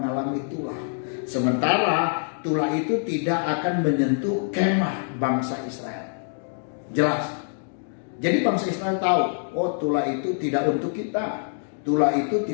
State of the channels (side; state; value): right; silent; digital silence